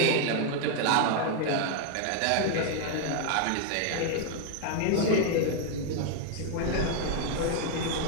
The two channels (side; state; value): both; different; correlation 0.00